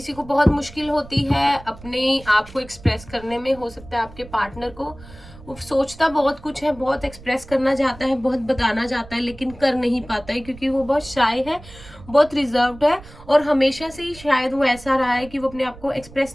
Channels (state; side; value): noise; right; rumble, 19 dB below the sound